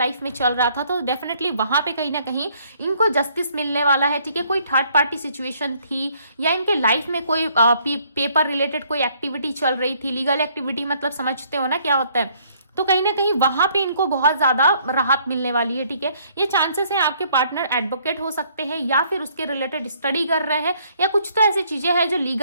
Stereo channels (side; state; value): both; inverted; correlation -0.65